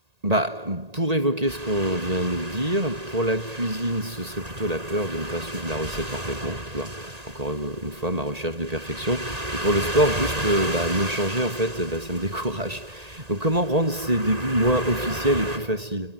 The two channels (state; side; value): late; left; 1.8 ms